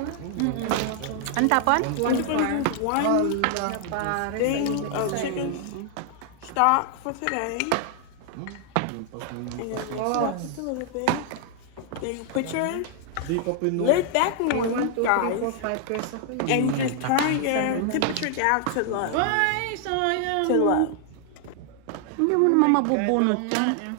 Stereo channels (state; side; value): different; both; correlation 0.00